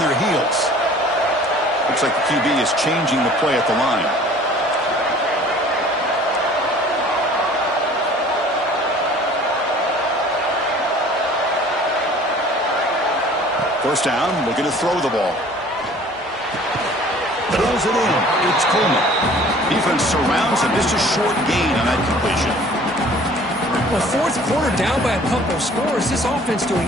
heels. Looks like the QB is changing the play at the line. First down, looking to throw the ball. Throws it in. It's Coleman. Defense surrounds him. Just a short gain on that completion. Well, fourth quarter down by a couple of scores. This offense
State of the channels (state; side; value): normal; both; correlation 0.50